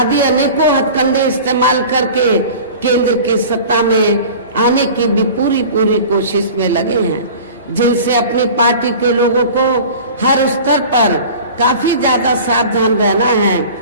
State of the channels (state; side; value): inverted; both; correlation -0.40